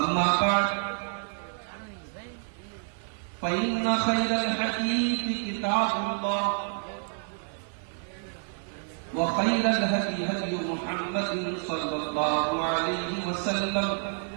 بعد فإن خير الحديث كتاب الله وخير الهدي هدي محمد صلى الله عليه وسلم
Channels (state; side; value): silent; left; 59 dB below the other